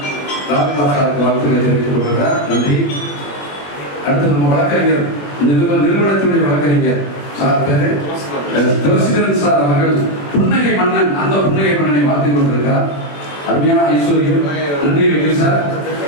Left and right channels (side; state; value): right; late; 21 ms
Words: ராம்குமார் சாருக்கு வாழ்த்துக்களை தெரிவித்துக் கொள்கிறார். நன்றி. அடுத்து நம்ம வழக்கறிஞர் நிறுவனத்தினுடைய வழக்கறிஞர் சார் பேரு துளசிதரன் சார் அவர்கள் புன்னகை மன்னன், அந்த புன்னகை மன்னனை வாழ்த்து கொண்டிருக்கிறார். அருமையான ஐஸ்வர்யம். நன்றி வெங்கி சார்.